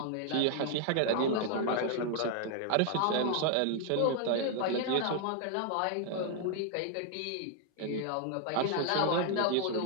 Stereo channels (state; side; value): different; both; correlation 0.00